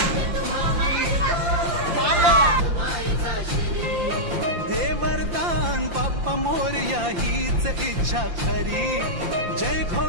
मायेचा शिरी। दे वरदान बाप्पा मोरया हीच इच्छा खरी। जय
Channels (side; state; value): left; late; 5.8 ms